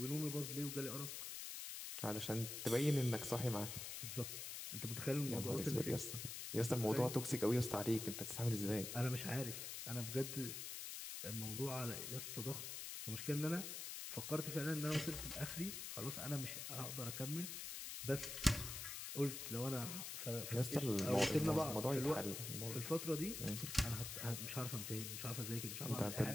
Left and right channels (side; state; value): left; noise; hiss, 6 dB below the sound